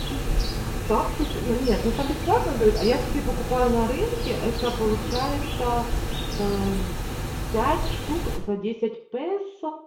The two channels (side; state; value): both; identical; correlation 1.00